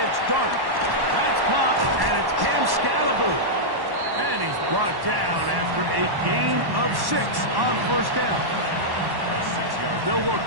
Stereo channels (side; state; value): left; late; 1.1 ms